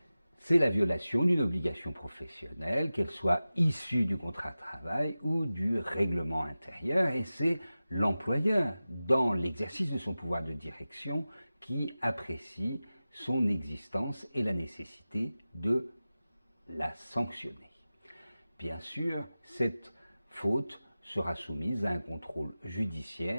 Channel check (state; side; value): inverted; both; correlation -0.96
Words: C'est la violation d'une obligation professionnelle, qu'elle soit issue du contrat de travail ou du règlement intérieur, et c'est l'employeur, dans l'exercice de son pouvoir de direction, qui apprécie son existence et la nécessité de la sanctionner. Bien sûr, cette faute sera soumise à un contrôle